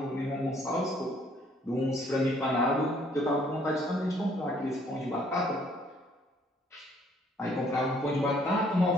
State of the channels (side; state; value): both; normal; correlation 0.63